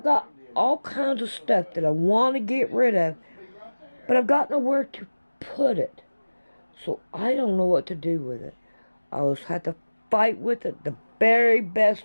got all kinds of stuff that I want to get rid of, but I've got nowhere to put it. So I don't know what to do with it. I will have to fight with it the very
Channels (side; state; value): both; inverted; correlation -1.00